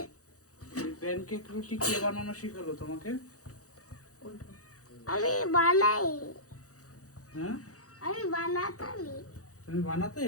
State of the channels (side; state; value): right; late; 0.66 ms